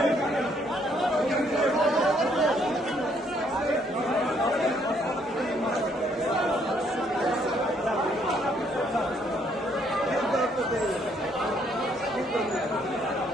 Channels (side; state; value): both; normal; correlation 0.68